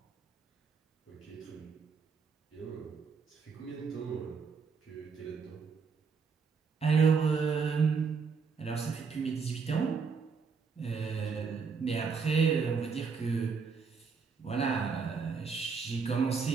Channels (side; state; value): left; quieter; 5.4 dB